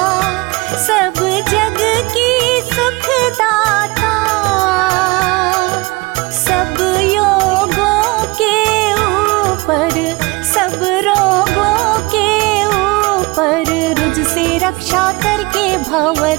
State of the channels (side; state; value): left; quieter; 24.3 dB